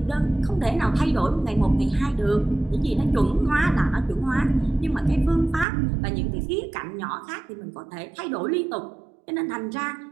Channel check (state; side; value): drops out; left; at 5.7 s